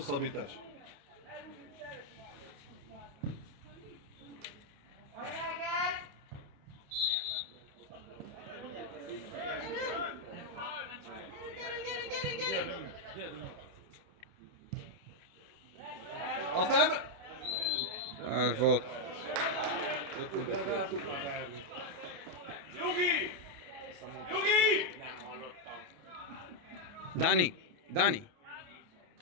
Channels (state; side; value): late; left; 28 ms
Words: Az nem... Ez volt. Nyugi! Nyugi! Dani, Dani.